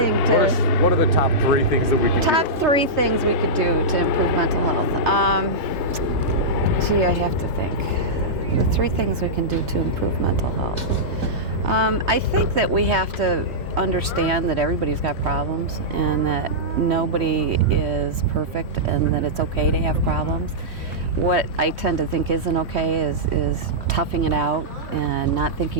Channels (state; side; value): normal; both; correlation -0.12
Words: what are the top three things that we could do? Top three things we could do to improve mental health. Gee, I have to think. The three things we can do to improve mental health. I think that we have to understand that everybody's got problems and that nobody is perfect and that it's okay to have problems. What I tend to think isn't okay is toughing it out and not